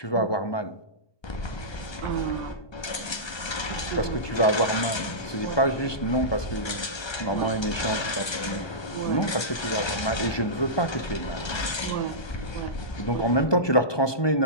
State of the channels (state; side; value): late; right; 1.3 ms